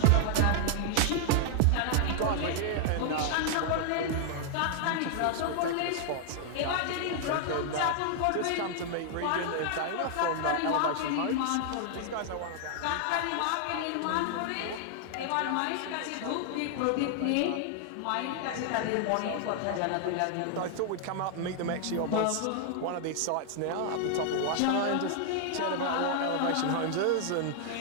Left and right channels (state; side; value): different; both; correlation -0.01